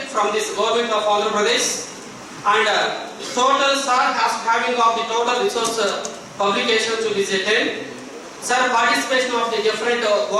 from this government of Andhra Pradesh. And total sir has having of the total resource publication to be 10. Sir participation of the different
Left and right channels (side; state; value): both; identical; correlation 1.00